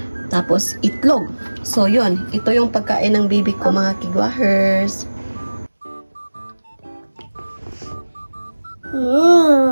Tapos, itlog. So, yun. Ito yung pagkain ng baby ko, mga kigwahers.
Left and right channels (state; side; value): inverted; both; correlation -1.00